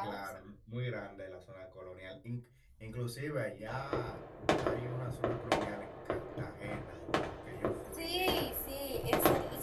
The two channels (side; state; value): both; identical; correlation 1.00